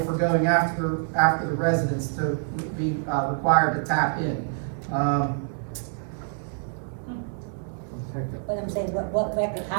for going after the residents to be required to tap in. But I'm saying, what record,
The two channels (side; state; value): left; silent; digital silence